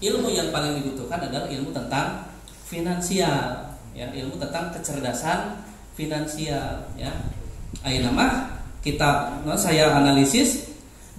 yang paling dibutuhkan adalah ilmu tentang finansial. Ya, ilmu tentang kecerdasan finansial ya. Ayeuna mah kita saya analisis.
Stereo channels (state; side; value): identical; both; correlation 1.00